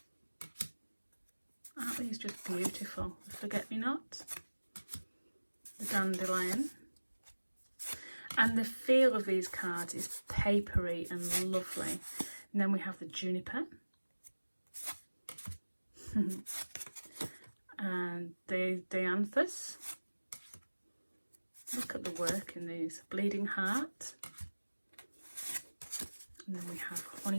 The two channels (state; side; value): inverted; both; correlation -1.00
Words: Aren't these just beautiful? The forget-me-not, the dandelion. And the feel of these cards is papery and lovely. And then we have the juniper. And the dianthus. Look at the work in these. Bleeding heart. And then we have